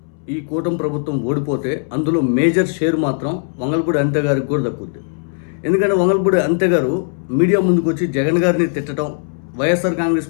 ఈ కూటమి ప్రభుత్వం ఓడిపోతే అందులో మేజర్ షేర్ మాత్రం వంగలపూడి అంతే గారికి కూడా దక్కుద్ది. ఎందుకంటే వంగలపూడి అంతే గారు మీడియా ముందుకు వచ్చి జగన్ గారిని తిట్టడం, వైఎస్ఆర్ కాంగ్రెస్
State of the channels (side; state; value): right; silent; 67 dB below the other